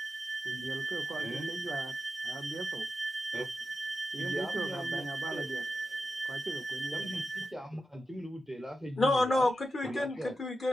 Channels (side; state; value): both; normal; correlation 0.90